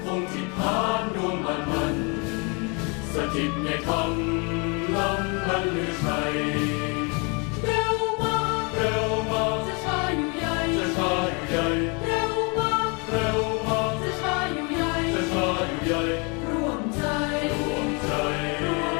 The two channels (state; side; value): quieter; right; 32.4 dB